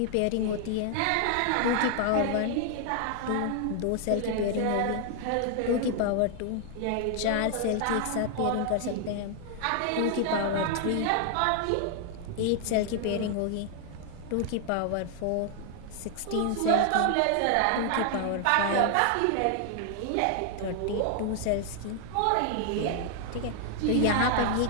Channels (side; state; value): both; different; correlation 0.00